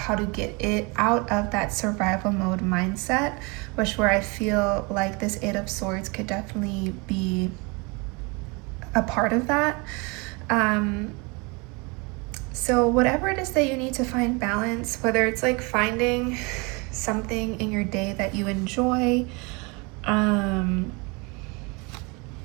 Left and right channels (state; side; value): quieter; left; 28.9 dB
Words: to get it out of that survival mode mindset, which where I feel like this Eight of Swords could definitely be a part of that. So whatever it is that you need to find balance, whether it's like finding something in your day that you enjoy,